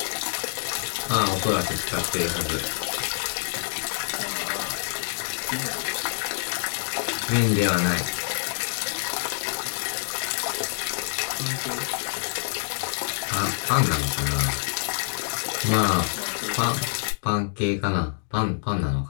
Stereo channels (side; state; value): right; silent; digital silence